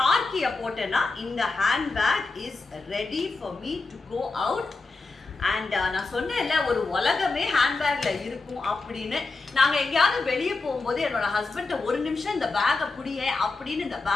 கீயை போட்டேன்னா இந்த handbag is ready for me to go out. And நான் சொன்னேன்ல ஒரு உலகமே ஹேண்ட்பேக்ல இருக்கும் அப்படின்னு. நாங்கள் எங்கேயாவது வெளியே போகும்போது என்னோட ஹஸ்பண்ட ஒரு நிமிஷம் இந்த பேக்கை புடிய அப்படின்னு இந்த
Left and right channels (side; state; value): right; quieter; 3.7 dB